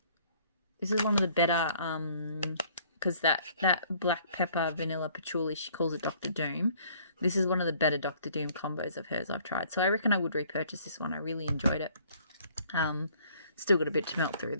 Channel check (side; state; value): both; inverted; correlation -0.58